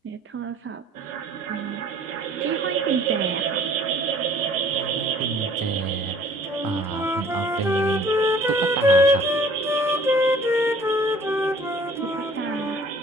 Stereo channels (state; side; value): normal; both; correlation 0.53